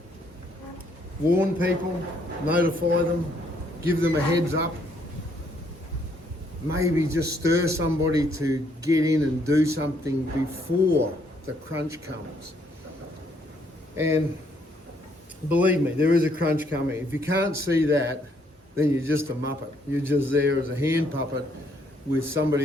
warn people, notify them, give them a heads up, maybe just stir somebody to get in and do something before the crunch comes. And believe me, there is a crunch coming. If you can't see that, then you're just a muppet. You're just there as a hand puppet with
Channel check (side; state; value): both; normal; correlation 0.69